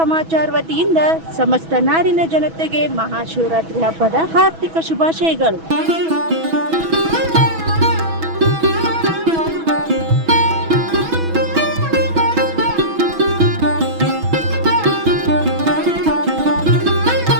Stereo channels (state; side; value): late; left; 6.1 ms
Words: ವತಿಯಿಂದ ಸಮಸ್ತ ನಾಡಿನ ಜನತೆಗೆ ಮಹಾಶಿವರಾತ್ರಿ ಹಬ್ಬದ ಹಾರ್ದಿಕ ಶುಭಾಶಯಗಳು.